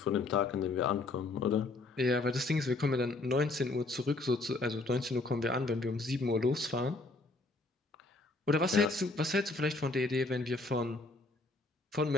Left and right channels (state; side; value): quieter; right; 3.2 dB